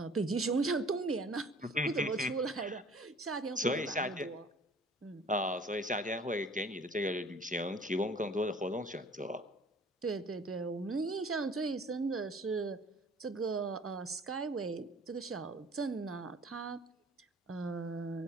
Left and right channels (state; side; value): normal; both; correlation 0.50